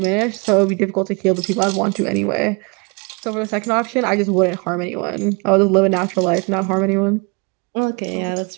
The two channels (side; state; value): left; quieter; 31.3 dB